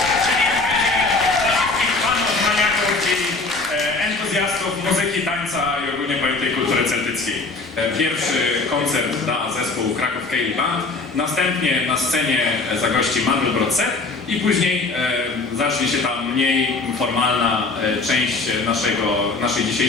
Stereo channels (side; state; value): right; quieter; 3.6 dB